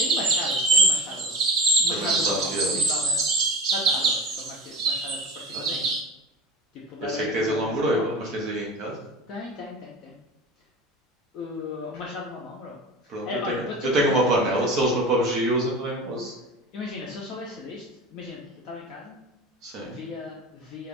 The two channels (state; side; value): normal; both; correlation 0.32